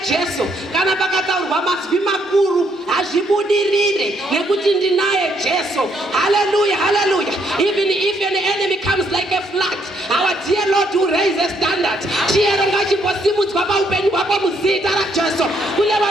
Jesu, kana pakataurwa mazwi makuru hazvibudirire nekuti ndinaye Jesu. Hallelujah, hallelujah. Even if an enemy comes like a flood, our dear Lord will raise a standard. Chiyero ngachimbosimudzwa paupenyu hwako muzita raJesu. Kune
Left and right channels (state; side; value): normal; both; correlation 0.72